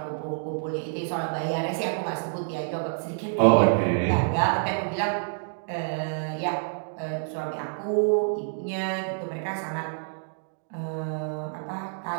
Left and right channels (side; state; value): left; silent; digital silence